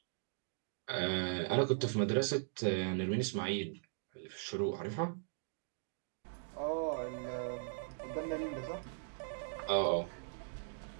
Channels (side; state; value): left; silent; digital silence